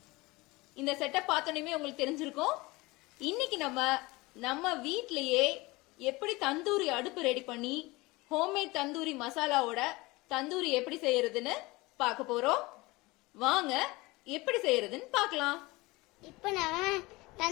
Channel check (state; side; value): quieter; right; 22.4 dB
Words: இந்த setup பார்த்தோன்னே உங்களுக்கு தெரிஞ்சிருக்கும். இன்னைக்கு நம்ம வீட்லயே எப்படி தந்தூரி அடுப்பு ரெடி பண்ணி ஹோம்மேட் தந்தூரி மசாலாவோட தந்தூரி எப்படி செய்யறதுன்னு பார்க்க போறோம். வாங்க எப்படி செய்யறதுன்னு பார்க்கலாம். இப்போ நம்ம